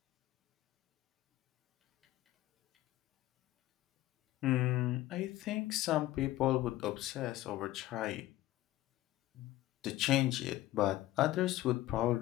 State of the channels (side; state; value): right; quieter; 15.8 dB